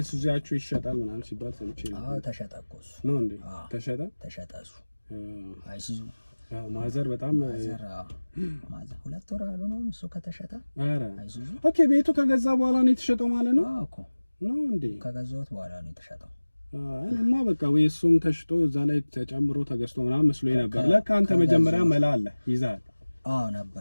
ይሸጣል ምናምን ሲባል ሰምቼ ነው። አዎ ተሸጠ እኮ እሱ ነው እንዴ? ተሸጠ እሱ አይሱዙ ማዘር በጣም ማዘር 2 ወር አልሆነውም እሱ ከተሸጠ። ኧረ አይሱዙ ኦኬ። ቤቱ ከገዛ በኋላ ነው የተሸጠው ማለት ነው? አዎ እኮ ነው እንዴ? ከገዛሁት በኋላ ነው የተሸጠው። እኔማ በቃ ወይ እሱም ተሽጦ እዛ ላይ ተጨምሮ ተገዝቶ ምናምን መስሎኝ ነበር። ለካ አንተ መጀመሪያ መላ አለ ይዛል። አዎ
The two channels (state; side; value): inverted; both; correlation -1.00